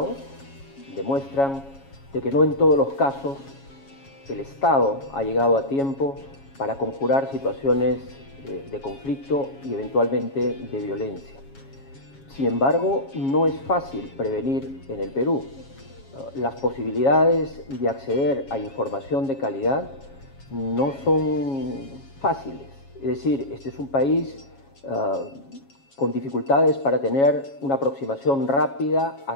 demuestran de que no en todos los casos el Estado ha llegado a tiempo para conjurar situaciones de conflicto y eventualmente de violencia. Sin embargo, no es fácil prevenir en el Perú. Las posibilidades de acceder a información de calidad no son fáciles. Es decir, este es un país con dificultades para tener una aproximación rápida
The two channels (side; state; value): right; late; 7.3 ms